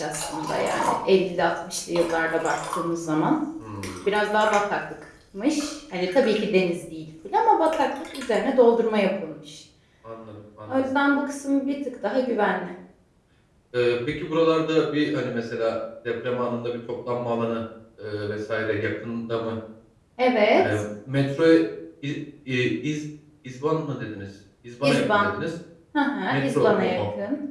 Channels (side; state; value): both; identical; correlation 1.00